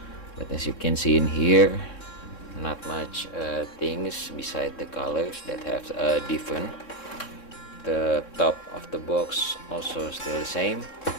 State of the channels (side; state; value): right; late; 3.7 ms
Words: But as you can see in here, not much things beside the colors that have different. The top of the box also still the same.